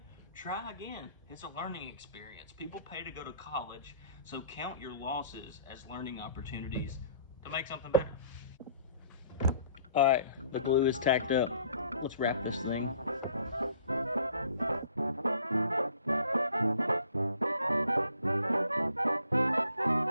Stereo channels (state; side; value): inverted; both; correlation -0.55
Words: try again. It's a learning experience. People pay to go to college, so count your losses as learning opportunities to make something better. All right, the glue is tacked up. Let's wrap this thing.